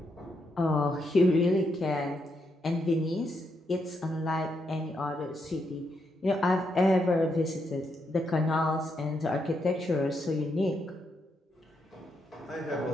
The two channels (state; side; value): normal; both; correlation 0.80